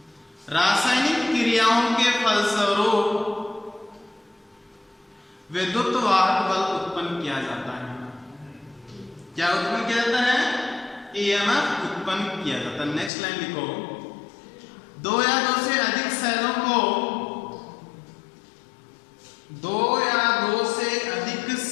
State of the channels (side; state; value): right; drops out; at 13.1 s